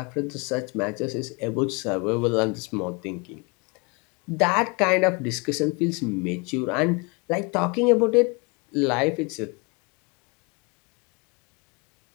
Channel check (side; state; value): right; quieter; 29.7 dB